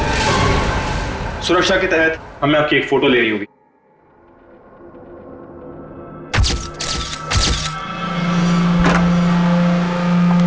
सुरक्षा के तहत हमें आपकी एक फोटो ले रही होगी।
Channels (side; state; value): both; identical; correlation 1.00